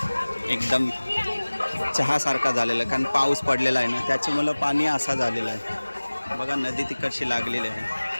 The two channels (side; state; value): both; inverted; correlation -1.00